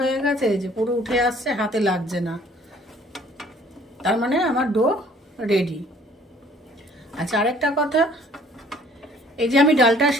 গেছে, যে পুরো উঠে আসছে, হাতে লাগছে না, তার মানে আমার ডো রেডি। আচ্ছা, আরেকটা কথা, এই যে আমি ডালটা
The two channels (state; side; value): normal; both; correlation 0.57